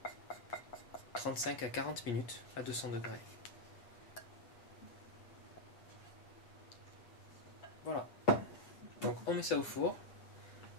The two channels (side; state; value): right; late; 8.5 ms